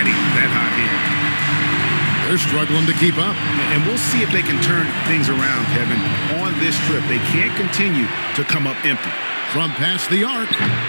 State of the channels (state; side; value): inverted; both; correlation -1.00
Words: that hot heat. They're struggling to keep up. And we'll see if they can turn things around, Kevin. On this trip, they can't continue to come up empty. From past the arc.